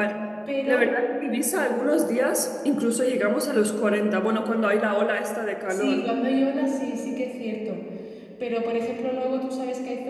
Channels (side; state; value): both; identical; correlation 1.00